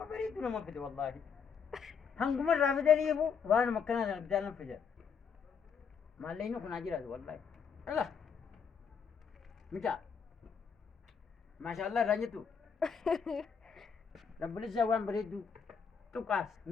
بريد ولا ما فدي والله هم مرة فدني يبو وأنا مكنا أنا بدال نفجر ما لينو كنا جيراد والله الله متى ما شاء الله رانيتو رب العزة وان بريدو تقاس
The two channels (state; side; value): quieter; right; 6.4 dB